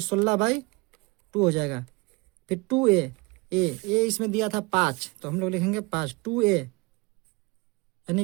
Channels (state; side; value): quieter; left; 26.7 dB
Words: 16/2 हो जाएगा। फिर 2a, ए इसमें दिया था 5 तो हम लोग लिखेंगे 5, 2a